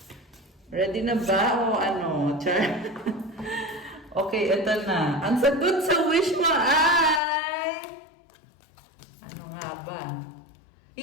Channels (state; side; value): drops out; right; at 7.2 s